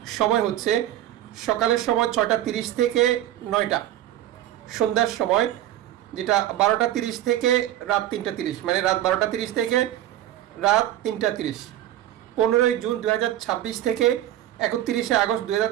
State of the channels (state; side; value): quieter; left; 12.8 dB